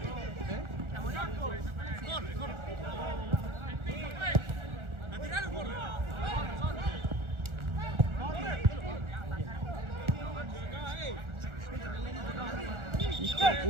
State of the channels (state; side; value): late; left; 1.4 ms